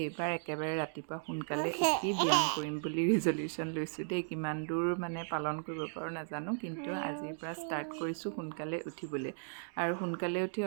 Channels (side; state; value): left; silent; digital silence